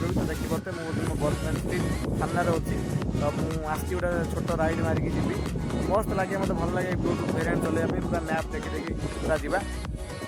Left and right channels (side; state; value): both; identical; correlation 1.00